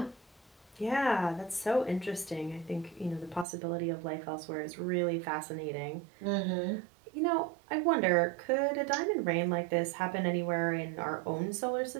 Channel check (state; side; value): drops out; left; at 3.5 s